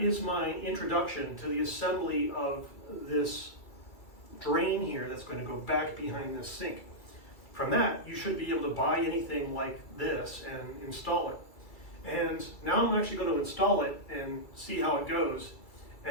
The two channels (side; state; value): right; late; 2.3 ms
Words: is my introduction to the assembly of this drain here that's going to go back behind this sink. From that, you should be able to buy anything like this and install it. And now I'm actually going to install it and see how it goes,